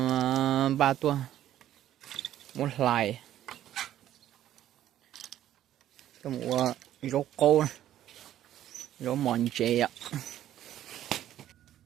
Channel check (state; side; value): quieter; left; 12.1 dB